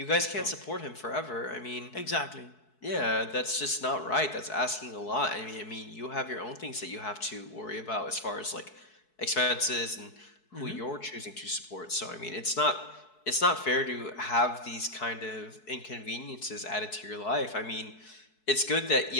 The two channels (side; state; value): right; late; 4.7 ms